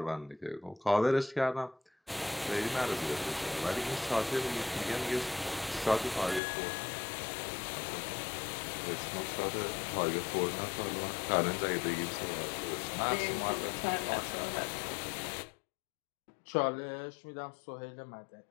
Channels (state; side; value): drops out; right; at 6.4 s